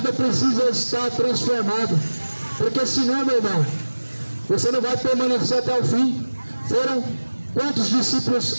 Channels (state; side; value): inverted; both; correlation -1.00